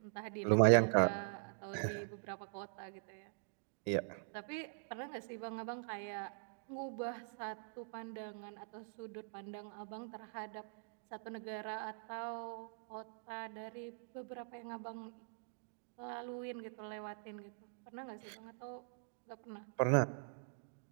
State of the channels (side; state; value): left; silent; digital silence